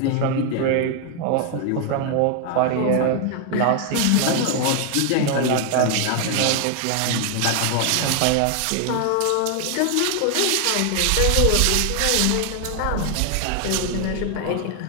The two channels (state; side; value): different; both; correlation 0.00